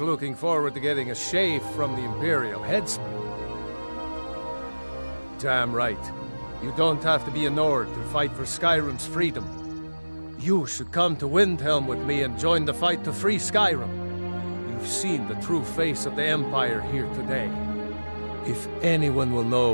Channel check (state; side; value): inverted; both; correlation -1.00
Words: forward to getting a shave from the Imperial headsman. Damn right. You don't have to be a Nord to fight for Skyrim's freedom. You should come to Windhelm with me and join the fight to free Skyrim. You've seen the true face of the Empire here today. If anyone will know